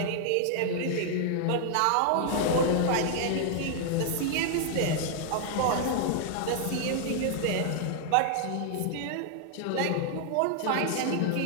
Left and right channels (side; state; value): both; different; correlation 0.00